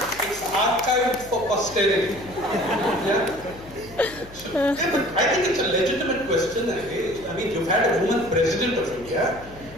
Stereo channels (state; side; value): noise; left; hum, 19 dB below the sound